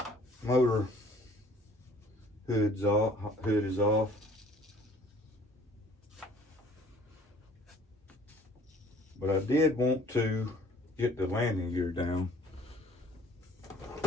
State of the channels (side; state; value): both; normal; correlation 0.54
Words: motor hood is off. But I did want to get the landing gear down,